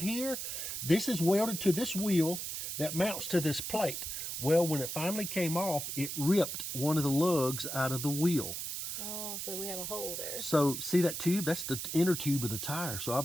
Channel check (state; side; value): noise; right; hiss, 5 dB below the sound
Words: here? This is welded to this wheel that mounts to this plate. Well, when it finally came off, it ripped one of the lugs out of the wheel. Oh, so we have a hole there. So see that tube? That's the inner tube of the tire. So